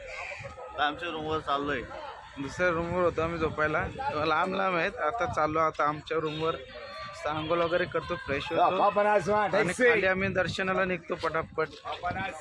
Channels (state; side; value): identical; both; correlation 1.00